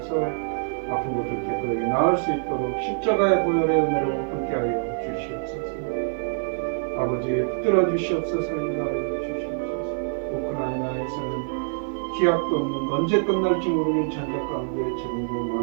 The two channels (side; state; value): left; silent; 62 dB below the other